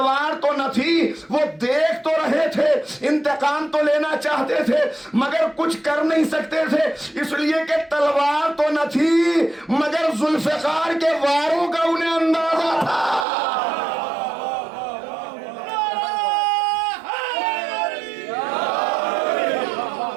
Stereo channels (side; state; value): left; drops out; at 13.2 s